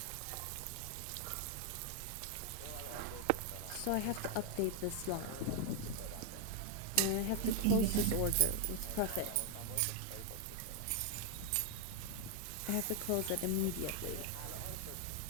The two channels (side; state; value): both; different; correlation 0.00